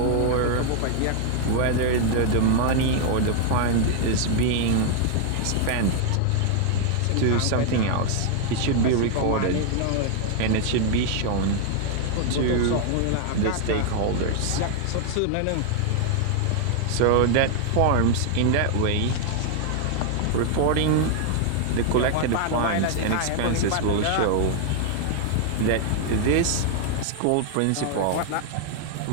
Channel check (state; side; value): different; both; correlation 0.00